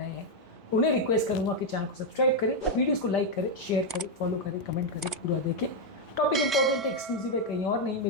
हैं उन्हें रिक्वेस्ट करूंगा कि चैनल को सब्सक्राइब करें, वीडियोस को लाइक करें, शेयर करें, फॉलो करें, कमेंट करें, पूरा देखें। टॉपिक इंपॉर्टेंट है, एक्सक्लूसिव है, कहीं और नहीं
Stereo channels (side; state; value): both; normal; correlation 0.01